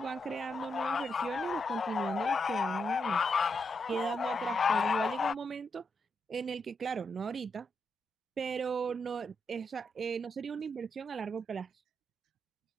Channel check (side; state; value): both; normal; correlation 0.82